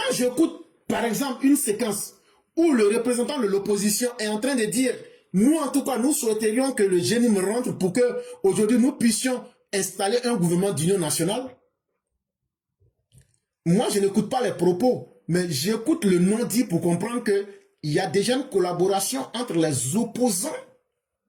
j'écoute, par exemple, une séquence où le représentant de l'opposition est en train de dire, nous, en tout cas, nous souhaiterions que le GNIM rentre pour que, aujourd'hui, nous puissions installer un gouvernement d'union nationale. Moi, je n'écoute pas les propos, mais j'écoute le non-dit pour comprendre qu'il y a déjà une collaboration entre les opposants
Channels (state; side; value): identical; both; correlation 1.00